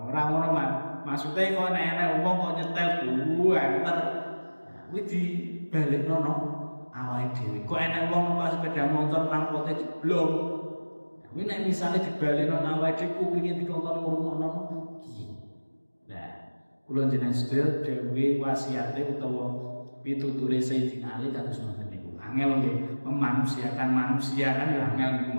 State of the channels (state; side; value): inverted; both; correlation -1.00